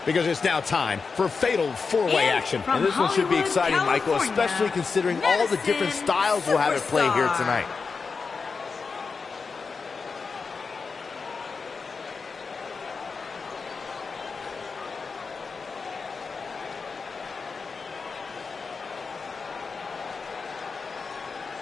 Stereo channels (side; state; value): right; quieter; 4.8 dB